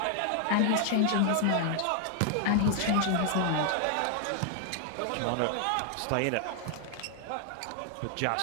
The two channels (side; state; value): both; different; correlation 0.00